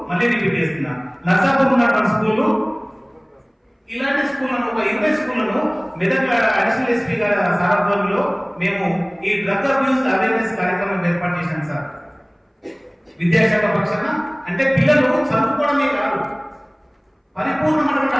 మళ్ళీ రిపీట్ చేస్తున్నా, నర్సాపూర్ ఉన్నటువంటి స్కూళ్ళు, ఇలాంటి స్కూళ్లను ఒక 20 స్కూళ్లను మెదక్ అడిషనల్ ఎస్పీ గారి సారథ్యంలో మేము ఈ డ్రగ్ అబ్యూస్ అవేర్నెస్ కార్యక్రమం ఏర్పాటు చేశాం సార్. విద్యాశాఖ పక్షాన అంటే పిల్లలు చదువుకోవడమే కాదు, పరిపూర్ణమైనటువంటి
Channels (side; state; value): both; identical; correlation 1.00